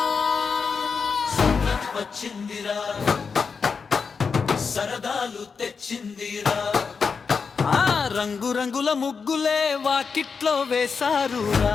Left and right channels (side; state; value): right; quieter; 5.4 dB